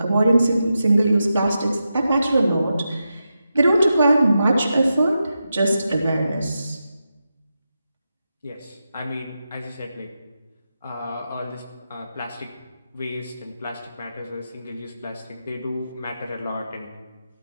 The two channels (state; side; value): inverted; both; correlation -0.89